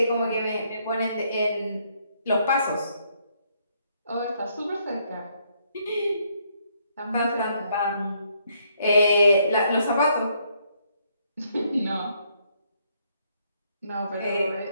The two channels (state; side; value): inverted; both; correlation -0.72